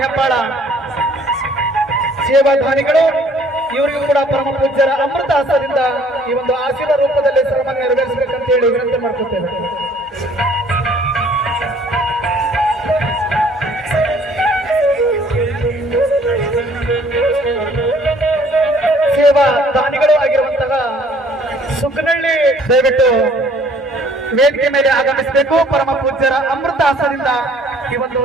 ಹೆಬ್ಬಾಳ ಸೇವಾದಾನಿಗಳು, ಇವರಿಗೂ ಕೂಡ ಪರಮ ಪೂಜ್ಯರ ಅಮೃತ ಹಸ್ತದಿಂದ ಈ ಒಂದು ಆಶೀರ್ವಾದ ರೂಪದಲ್ಲಿ ಸನ್ಮಾನ ನೆರವೇರಿಸಬೇಕಂತೇಳಿ ವಿನಂತಿ ಮಾಡ್ಕೊತೇವೆ. ಸೇವಾ ದಾನಿಗಳು ಆಗಿರುವಂತಹ ಸುಖನಹಳ್ಳಿ ದಯವಿಟ್ಟು ವೇದಿಕೆ ಮೇಲೆ ಆಗಮಿಸಬೇಕು. ಪರಮ ಪೂಜ್ಯರ ಅಮೃತ ಹಸ್ತದಿಂದ ಈ ಒಂದು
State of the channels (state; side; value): normal; both; correlation 0.58